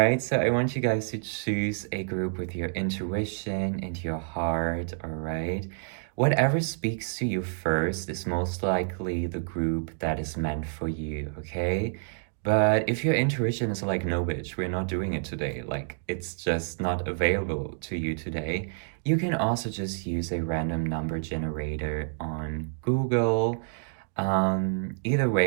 so I want you guys to choose a group with your intuition and your heart, all right? Whatever speaks to you first is most likely the group that is meant for you, okay? But if your intuition is like, no, bitch, we're not doing it today, like it's just not available to you today, you can also just use a random number generator on Google. Either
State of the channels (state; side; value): silent; left; digital silence